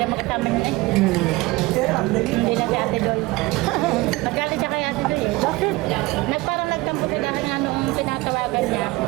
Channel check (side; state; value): left; quieter; 21.2 dB